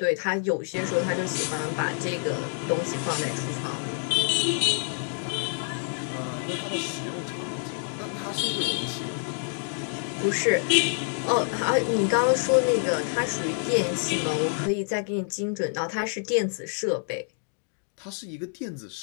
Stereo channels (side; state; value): right; silent; digital silence